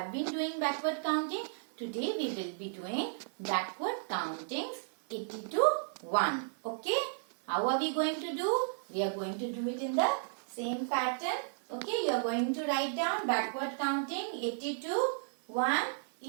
been doing backward counting. Today we will be doing backward countings 80 to 1. Okay, how are we going to do? We are going to do it in the same pattern. Okay, you are going to write down backward counting 80 to 1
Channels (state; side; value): silent; left; digital silence